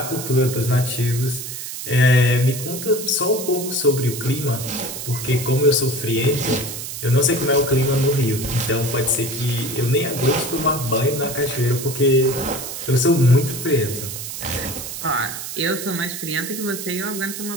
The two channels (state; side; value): noise; right; hiss, 8 dB below the sound